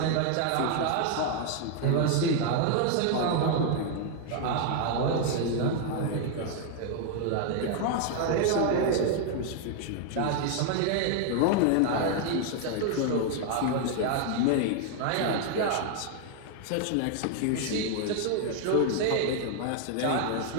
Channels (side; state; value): both; different; correlation 0.00